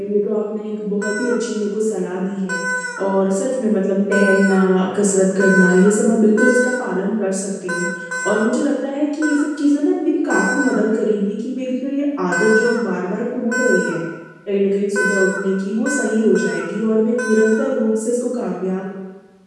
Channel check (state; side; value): identical; both; correlation 1.00